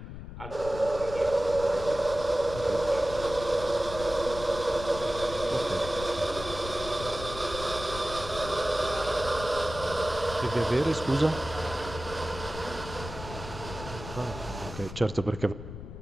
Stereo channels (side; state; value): left; noise; rumble, 11 dB below the sound